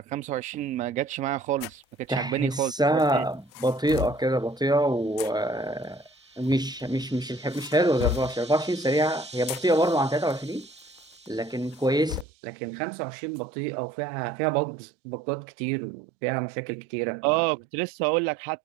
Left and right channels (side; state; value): left; drops out; at 12.2 s